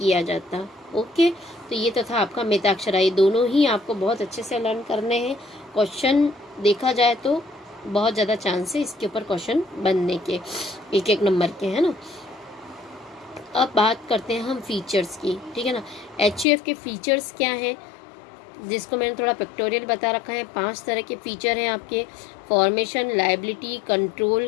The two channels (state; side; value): drops out; right; at 16.4 s